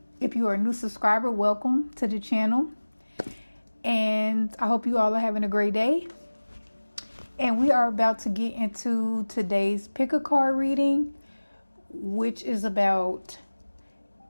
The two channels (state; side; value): inverted; both; correlation -1.00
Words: If you are a new subscriber, welcome to the channel. And I hope you all are having a great day. And we are about to get into today's pick a card reading, which is about